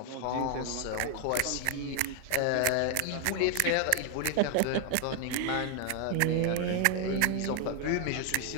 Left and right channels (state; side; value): different; both; correlation 0.00